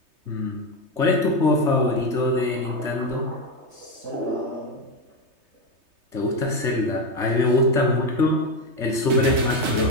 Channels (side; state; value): left; late; 3.2 ms